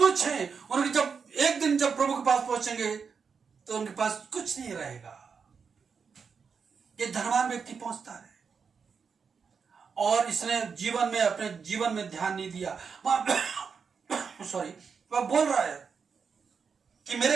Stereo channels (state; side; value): quieter; left; 5.9 dB